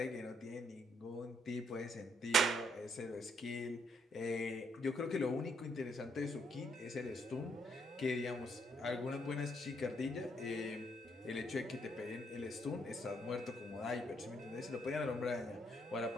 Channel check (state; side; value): normal; both; correlation 0.72